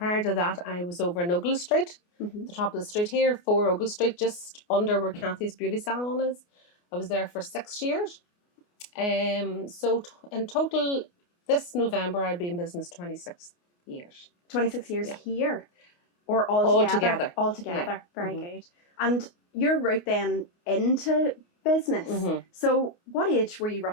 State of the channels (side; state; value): right; late; 29 ms